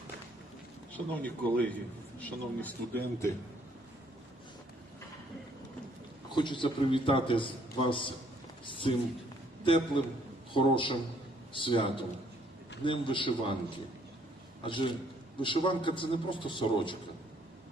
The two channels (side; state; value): both; normal; correlation 0.64